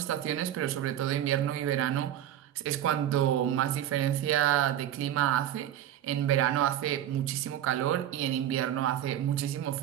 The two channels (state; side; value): quieter; left; 11.5 dB